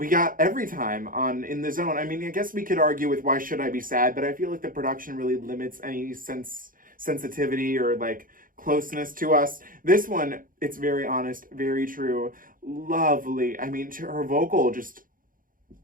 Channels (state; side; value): late; left; 0.40 ms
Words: got Every Time on In the Zone. I mean, I guess we could argue with Why Should I Be Sad, but I feel like the production really limits any sensitivity or like closeness to us. This one, it's very honest, very true, lovely. I mean, her vocal just